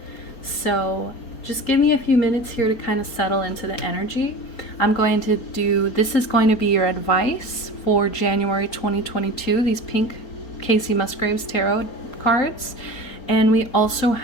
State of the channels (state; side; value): late; right; 4.3 ms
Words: So just give me a few minutes here to kind of settle into the energy. I'm going to do, this is going to be your advice for January 2022, these pink Casey Musgraves tarot cards. And we also